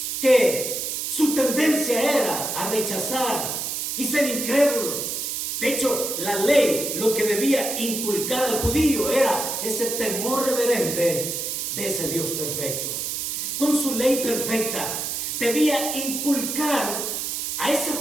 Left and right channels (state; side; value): noise; right; hiss, 3 dB below the sound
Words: que su tendencia era a rechazar y ser incrédulos. De hecho, la ley lo que debía inculcar al judío era ese temor reverente de ese Dios perfecto. Con su ley perfecta debía inculcar a ese